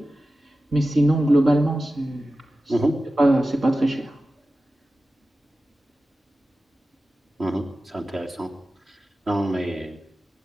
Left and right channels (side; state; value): both; normal; correlation 0.94